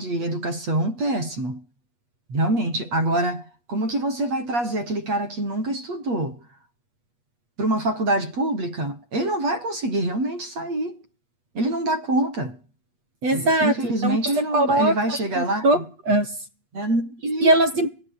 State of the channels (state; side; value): late; left; 8.3 ms